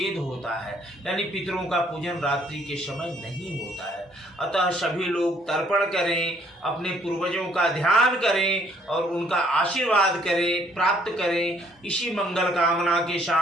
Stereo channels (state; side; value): normal; both; correlation 0.64